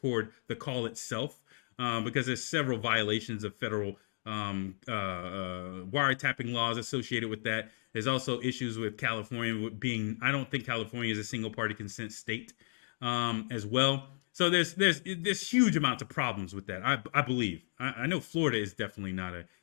the call itself because there's several violations of federal wiretapping laws associated with that. There's also issues with California being, I don't think California is a single party consent state. As well. So there's huge amounts of problems with that. I believe. I know Florida is definitely not a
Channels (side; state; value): right; silent; digital silence